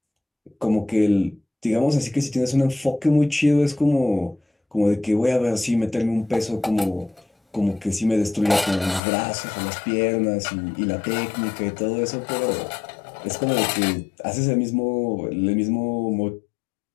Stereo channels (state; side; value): drops out; right; at 9.0 s